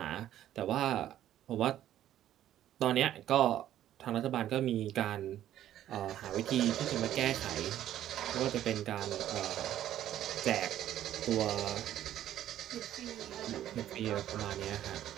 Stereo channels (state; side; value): quieter; left; 12.0 dB